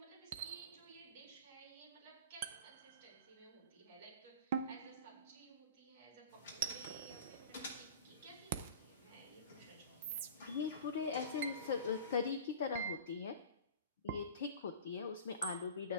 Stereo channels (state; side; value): inverted; both; correlation -0.38